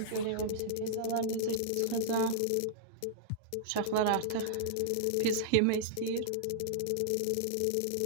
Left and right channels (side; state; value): both; different; correlation -0.01